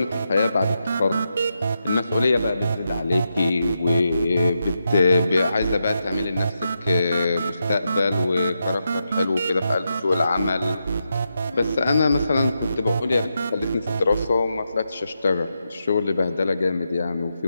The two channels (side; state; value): both; inverted; correlation -0.85